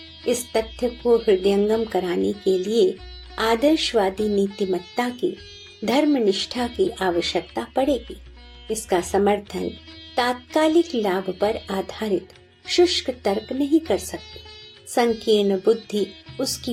इस तथ्य को हृदयंगम कराने के लिए आदर्शवादी नीतिमत्ता की, धर्मनिष्ठा की आवश्यकता पड़ेगी। इसका समर्थन तात्कालिक लाभ पर आधारित शुष्क तर्क नहीं कर सकते। संकीर्ण बुद्धि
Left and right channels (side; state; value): both; identical; correlation 1.00